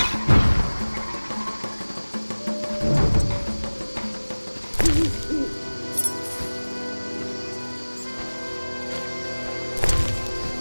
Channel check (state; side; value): inverted; both; correlation -1.00